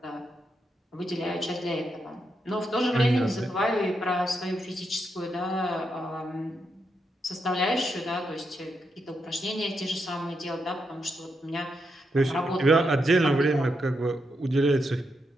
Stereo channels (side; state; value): both; normal; correlation 0.82